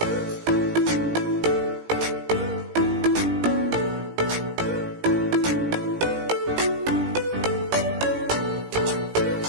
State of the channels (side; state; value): left; late; 17 ms